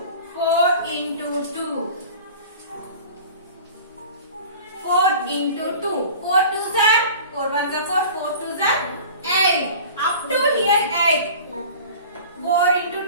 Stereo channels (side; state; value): both; inverted; correlation -0.41